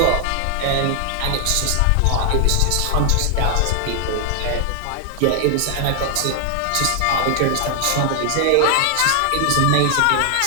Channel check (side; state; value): both; different; correlation 0.00